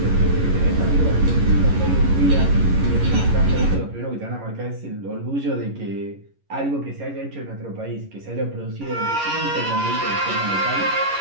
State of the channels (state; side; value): late; left; 11 ms